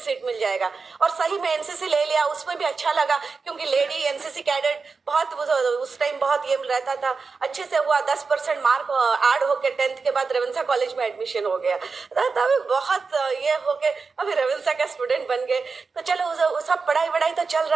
मिल जाएगा। और सही में एनसीसी ले लिया, उसमें भी अच्छा लगा, क्योंकि लेडी एनसीसी कैडेट बहुत उस टाइम बहुत ये रहता था, अच्छे से हुआ, 10% मार्क ऐड होके 10th के बाद रेवेंसा कॉलेज में एडमिशन हो गया। तभी बहुत ये हो के अभी रेवेंसा का स्टूडेंट बन गए। तो चलो वो सब पढ़ाई वढ़ाई तो चल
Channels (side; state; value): left; quieter; 4.7 dB